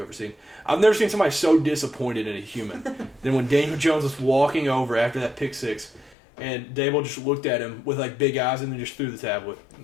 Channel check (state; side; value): drops out; right; at 6.2 s